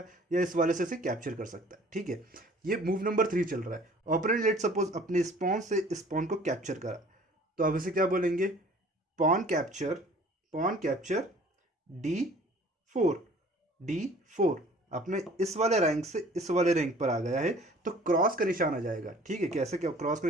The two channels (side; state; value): both; normal; correlation 0.51